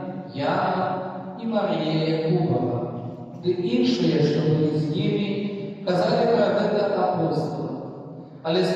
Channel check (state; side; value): identical; both; correlation 1.00